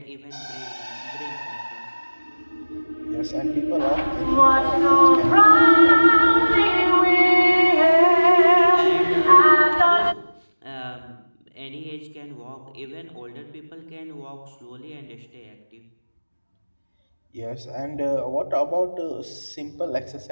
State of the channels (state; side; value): inverted; both; correlation -1.00